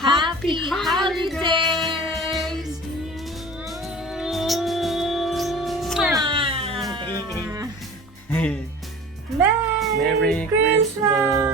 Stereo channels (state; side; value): normal; both; correlation 0.40